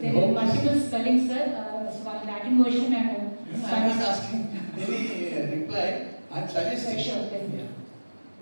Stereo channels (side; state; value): both; inverted; correlation -1.00